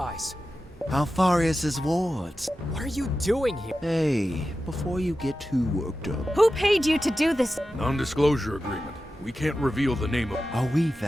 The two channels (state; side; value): normal; both; correlation 0.93